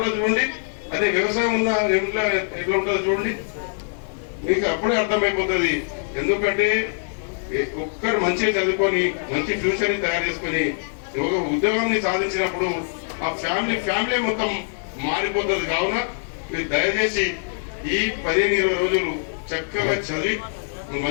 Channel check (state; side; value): silent; right; digital silence